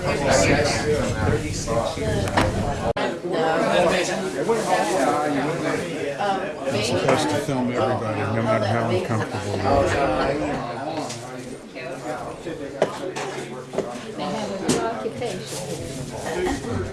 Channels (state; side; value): identical; both; correlation 1.00